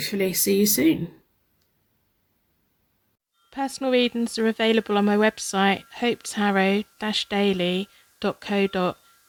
see you soon. Personal readings are available on my website,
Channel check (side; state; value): both; identical; correlation 1.00